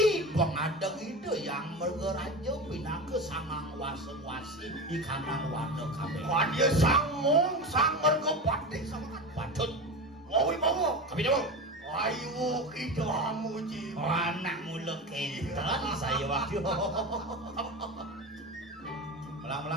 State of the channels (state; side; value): normal; both; correlation 0.25